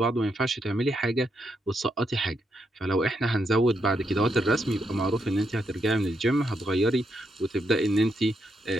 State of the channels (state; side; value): normal; both; correlation 0.80